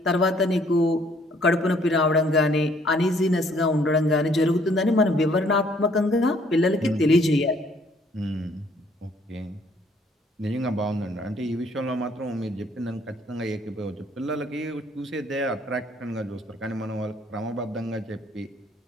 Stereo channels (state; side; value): normal; both; correlation 0.63